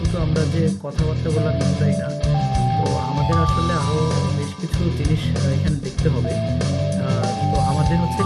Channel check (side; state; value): both; identical; correlation 1.00